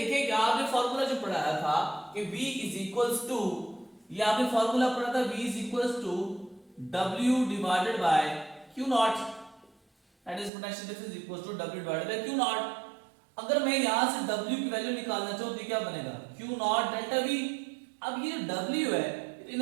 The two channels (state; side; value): drops out; left; at 10.5 s